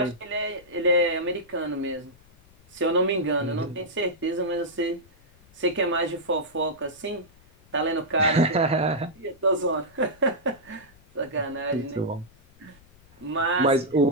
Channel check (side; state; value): left; noise; rumble, 27 dB below the sound